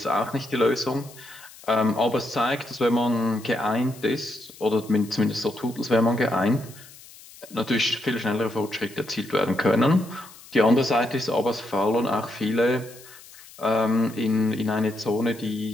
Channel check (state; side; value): noise; left; hiss, 20 dB below the sound